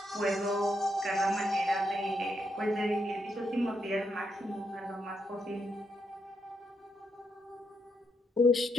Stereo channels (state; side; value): normal; both; correlation 0.79